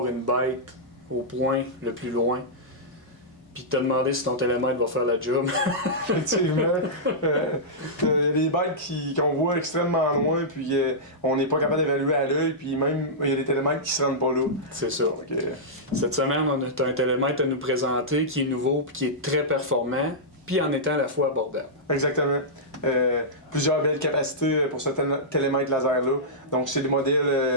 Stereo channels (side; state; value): both; normal; correlation -0.13